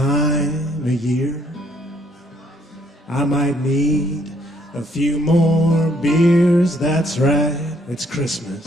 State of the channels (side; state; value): both; normal; correlation 0.67